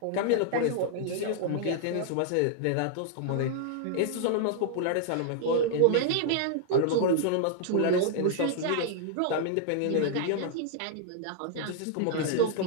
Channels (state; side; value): different; both; correlation -0.01